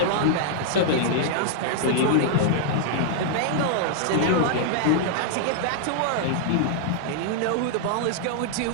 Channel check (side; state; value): both; different; correlation -0.01